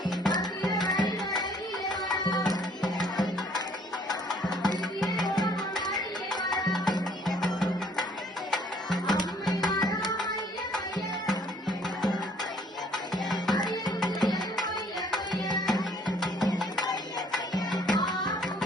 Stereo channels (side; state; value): both; normal; correlation 0.60